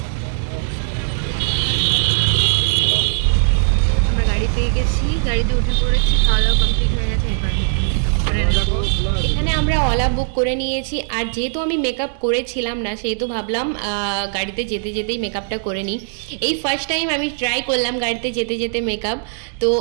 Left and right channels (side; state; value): left; silent; digital silence